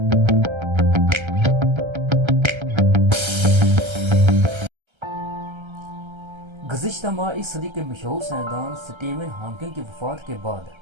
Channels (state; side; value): late; left; 1.3 ms